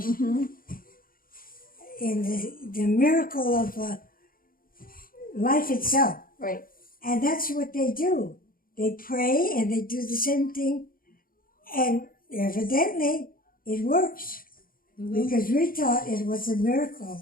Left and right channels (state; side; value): late; right; 0.41 ms